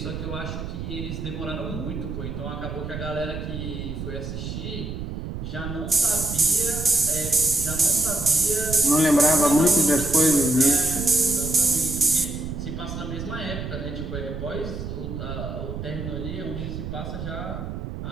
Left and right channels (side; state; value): right; noise; rumble, 6 dB below the sound